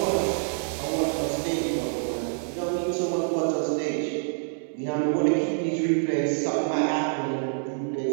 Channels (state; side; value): silent; left; digital silence